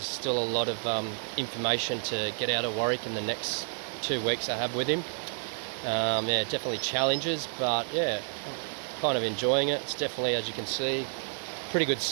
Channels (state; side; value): silent; left; digital silence